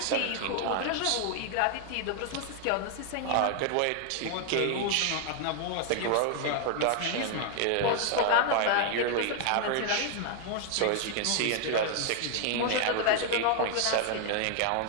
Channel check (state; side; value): different; both; correlation 0.00